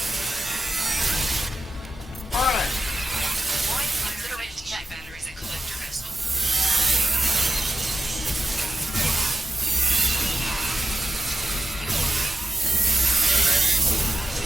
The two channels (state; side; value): normal; both; correlation 0.91